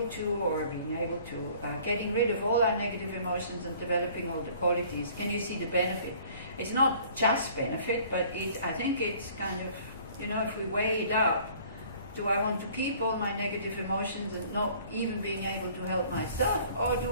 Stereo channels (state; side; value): inverted; both; correlation -0.53